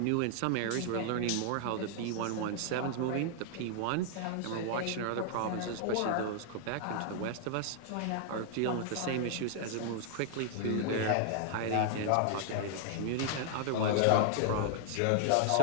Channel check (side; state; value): both; different; correlation -0.01